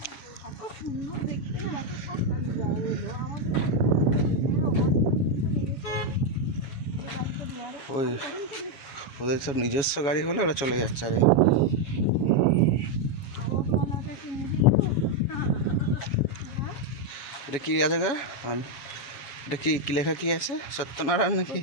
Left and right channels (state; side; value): late; right; 7.1 ms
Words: এত সুন্দর দেখতে না, এত সব এলো আমাদের ওই ওদের সব নিজস্ব গাড়ি হলে ওরা চলে যাচ্ছে। আরে এটা কি আছে গা? এটা কি কি লেখা কি আছে? সত্যনারায়ণ নাকি